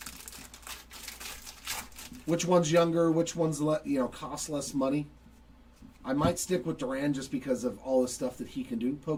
Which one's younger? Which one's cost less money? I might stick with Duran just because of all the stuff that he can do.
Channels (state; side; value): identical; both; correlation 1.00